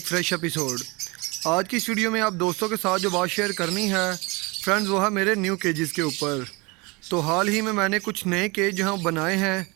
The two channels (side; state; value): left; quieter; 26.5 dB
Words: फ़्रेश एपिसोड। आज की इस वीडियो में आप दोस्तों के साथ जो बात शेयर करनी है फ्रेंड्स, वो है मेरे न्यू केजेस के ऊपर। तो हाल ही में मैंने कुछ नए केज जो हैं बनाए हैं,